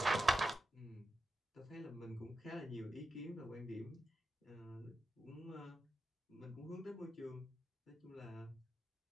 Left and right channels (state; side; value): normal; both; correlation 0.89